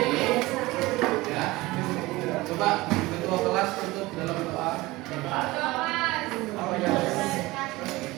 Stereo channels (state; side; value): quieter; left; 20.3 dB